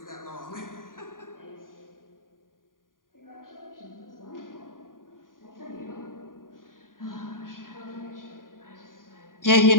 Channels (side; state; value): right; late; 0.90 ms